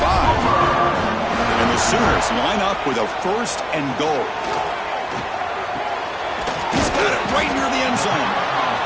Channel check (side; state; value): both; identical; correlation 1.00